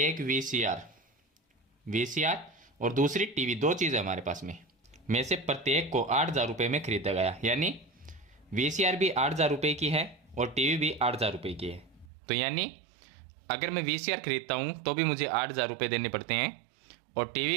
वीसीआर और दूसरी टीवी, दो चीज़ें हमारे पास में से प्रत्येक को 8,000 रुपये में खरीदा गया। यानी वीसीआर भी 8,000 रुपये की है और टीवी भी 8,000 रुपये की है। तो यानी अगर मैं वीसीआर खरीदता हूँ तो भी मुझे 8,000 रुपये देने पड़ते हैं और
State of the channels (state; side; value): drops out; left; at 12.1 s